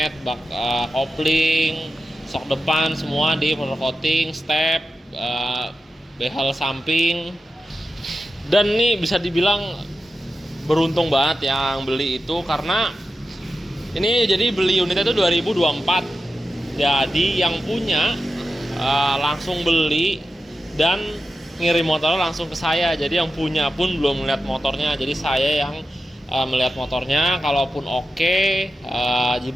bak kopling, sok depan semua di powder coating, step, behel samping. Dan ini bisa dibilang beruntung banget yang beli itu, karena ini jadi beli unitnya itu 2024. Jadi yang punya langsung beli dan ngirim motornya langsung ke saya. Jadi yang punya pun belum melihat motornya. Jadi saya yang melihat motornya. Kalaupun oke,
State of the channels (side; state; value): both; normal; correlation 0.91